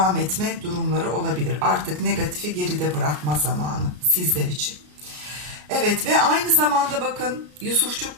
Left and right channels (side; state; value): left; late; 33 ms